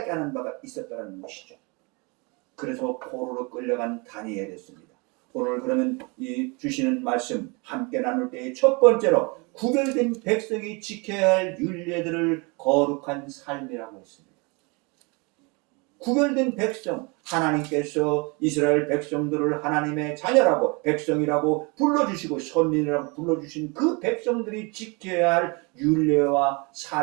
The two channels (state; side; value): quieter; left; 29.5 dB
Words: 하는 바가 있었다는 것이죠. 그래서 포로로 끌려간 다니엘이었습니다. 오늘 그러면 이 주시는 말씀 함께 나눌 때의 첫 번째로 구별된 백성이 지켜야 할 율례들을 거룩한 삶이라고 했습니다. 구별된 백성, 하나님께서 이스라엘 백성들을 하나님의 자녀라고 백성이라고 불러주시고 선민이라고 불러주신 그 백성들이 지켜야 할 율례와